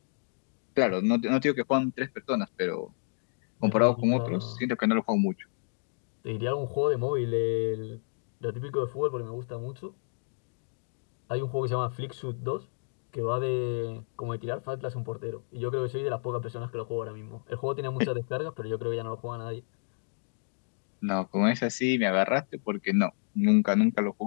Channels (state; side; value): silent; right; digital silence